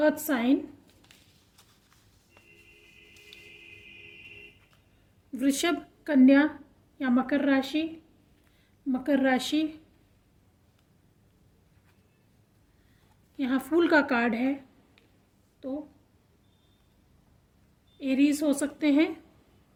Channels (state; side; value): identical; both; correlation 1.00